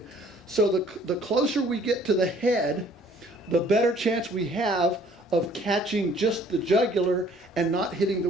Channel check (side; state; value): both; normal; correlation 0.57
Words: So the closer we get to the head, the better chance we have of catching just the jugular and not hitting the